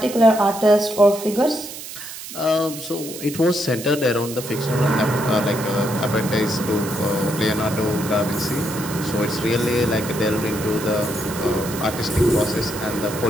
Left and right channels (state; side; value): noise; right; hiss, 11 dB below the sound